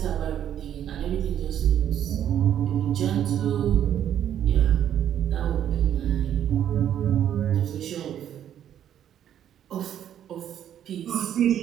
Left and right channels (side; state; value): left; quieter; 10.3 dB